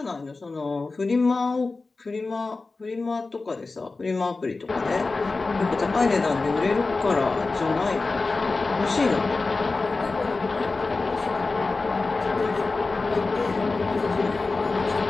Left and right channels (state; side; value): quieter; right; 3.7 dB